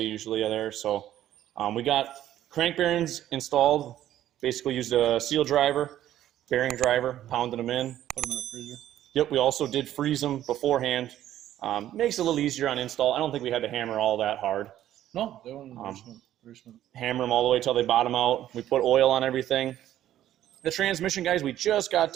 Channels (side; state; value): left; quieter; 12.3 dB